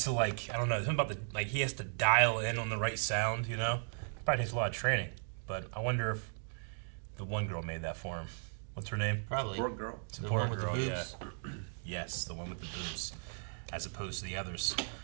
to, like, I don't know, something about like, he has to dial in on the right sound, you know? Probably takes a lot of training. But I wonder if the one girl made that for him. What's her name? Probably. Poor girl. The Support one with girl, the boobs. yeah. Yes, the one with the boobs, as opposed to the others.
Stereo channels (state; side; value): silent; left; 54 dB below the other